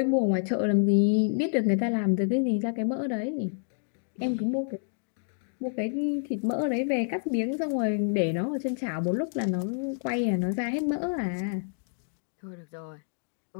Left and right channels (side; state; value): right; silent; digital silence